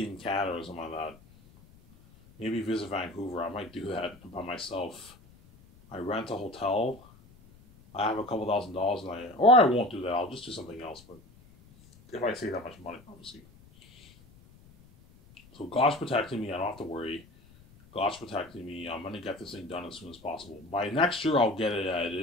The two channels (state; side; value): noise; left; rumble, 25 dB below the sound